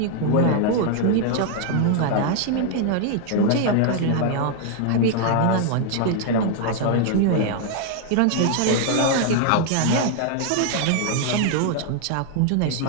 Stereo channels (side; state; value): both; different; correlation 0.00